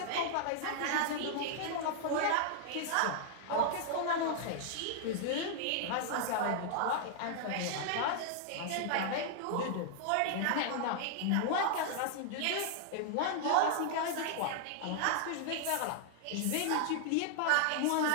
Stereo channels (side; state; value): both; different; correlation -0.01